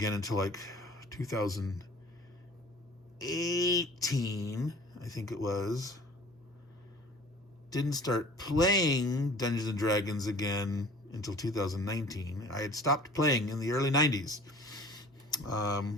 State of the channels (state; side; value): normal; both; correlation 0.47